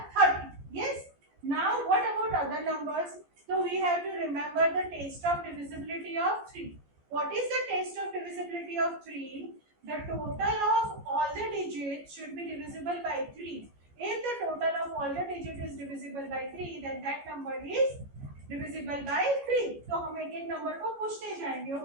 30. Yes. Now what about other numbers? So we have to remember the test of divisibility of 3. What is the test of divisibility of 3? The total of all the digits should be divisible by 3. If the total of all the digits is divisible by 3, then that number is divisible by 3. So हम एक एक number को पूछते जाएंगे.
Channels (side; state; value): left; late; 14 ms